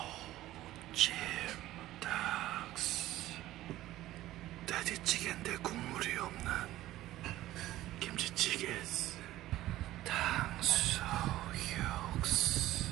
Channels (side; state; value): left; quieter; 15.2 dB